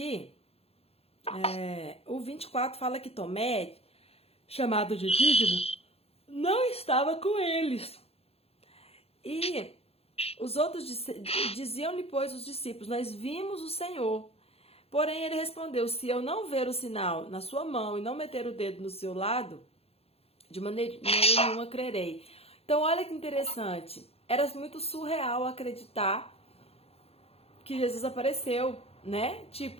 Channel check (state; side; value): late; right; 0.29 ms